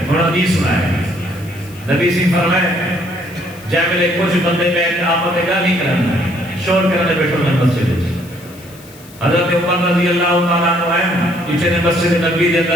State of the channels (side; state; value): left; noise; hiss, 22 dB below the sound